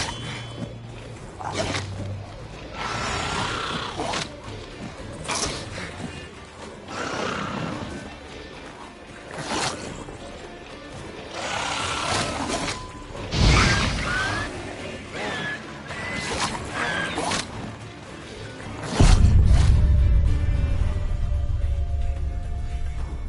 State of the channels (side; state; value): both; identical; correlation 1.00